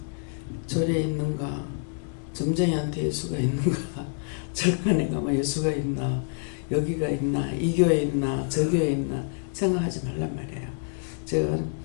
절에 있는가, 점쟁이한테 예수가 있는가, 절간에 가면 예수가 있나, 여기가 있나, 이 교회에 있나, 저 교회에 있나 생각하지 말란 말이에요. 제가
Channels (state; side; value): silent; right; 60 dB below the other